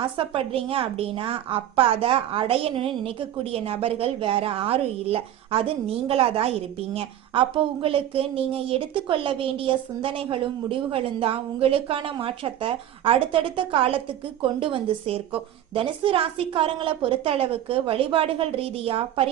ஆசைப்படுறீங்க அப்படின்னா, அப்ப அதை அடையணும்னு நினைக்கக்கூடிய நபர்கள் வேற யாரும் இல்லை, அது நீங்களா தான் இருப்பீங்க. அப்போ உங்களுக்கு நீங்க எடுத்துக்கொள்ள வேண்டிய சிந்தனைகளும் முடிவுகளும் தான் உங்களுக்கான மாற்றத்தை அடுத்தடுத்த காலத்துக்கு கொண்டு வந்து சேர்க்கும். தனுசு ராசிக்காரங்களை பொறுத்த அளவுக்கு வழிபாடுகள் ரீதியா,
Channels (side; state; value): left; quieter; 11.6 dB